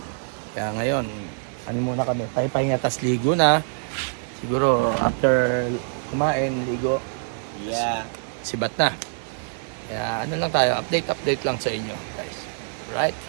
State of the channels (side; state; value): left; silent; digital silence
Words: Kaya ngayon, ano muna kami, pahinga tas ligo na. Siguro after kumain, ligo, Yeah. sibat na. Kaya ano lang tayo, update lang sa inyo guys. Right?